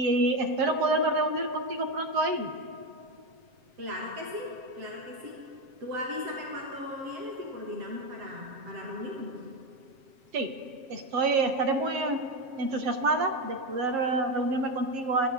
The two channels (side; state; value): left; late; 7.5 ms